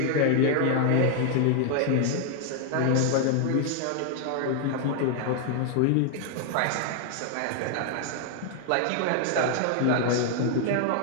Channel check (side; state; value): both; different; correlation 0.00